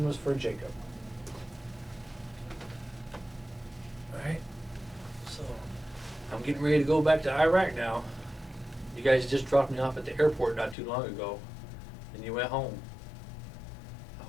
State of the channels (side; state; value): right; drops out; at 10.8 s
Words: was for Jacob. All right. So I'm getting ready to go back to Iraq now. You guys just dropped me off at the airport not too long ago, and you went home. I